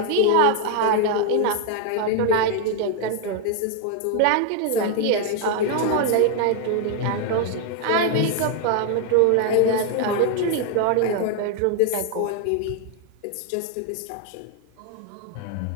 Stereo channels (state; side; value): different; both; correlation 0.00